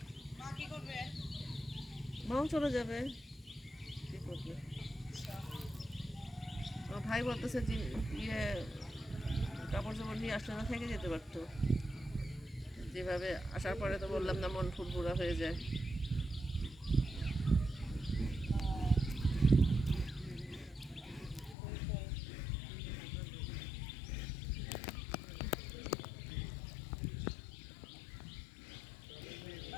মাও চলে যাবে, কি করবে। আমার ভাই বলতেছে যে ইয়ে কাপড় চাপড় নিয়ে আসলে না, থেকে যেতে পারতো। যেভাবে আসার পরে তো বললাম না, মন ফুরফুরা হয়ে যায়।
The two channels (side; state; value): right; drops out; at 21.6 s